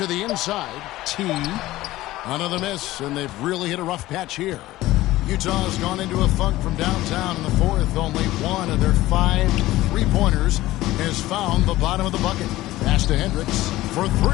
the inside. T. Another miss, and they've really hit a rough patch here. Utah has gone into a funk from downtown in the fourth. Only one of their 5 3-pointers has found the bottom of the bucket. Pass to Hendricks for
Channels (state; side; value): quieter; right; 16.7 dB